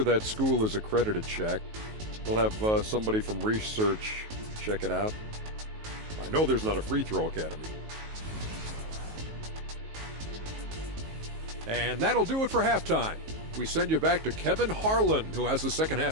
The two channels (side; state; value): left; late; 19 ms